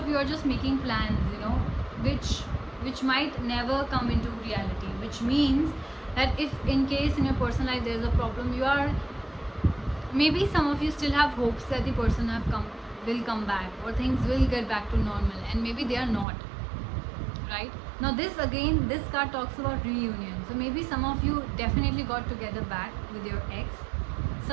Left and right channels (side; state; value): left; drops out; at 16.2 s